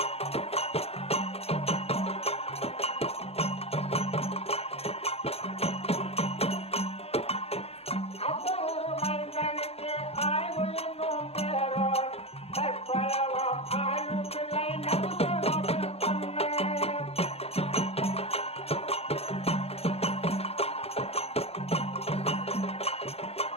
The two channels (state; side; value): late; right; 0.29 ms